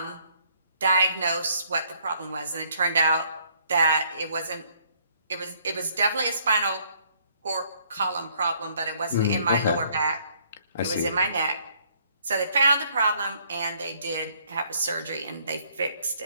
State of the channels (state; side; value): inverted; both; correlation -0.65